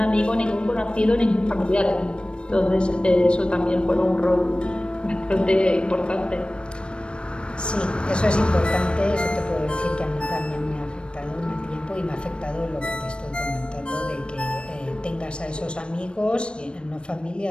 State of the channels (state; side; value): late; right; 0.056 ms